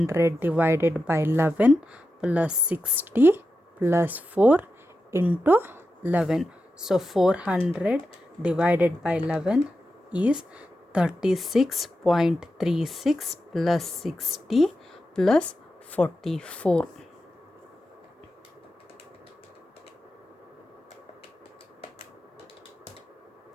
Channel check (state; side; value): normal; both; correlation 0.90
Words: divided by 11 plus 60 plus 4 into 11. So 400 divided by 11 is 36.36 plus 60 plus 44.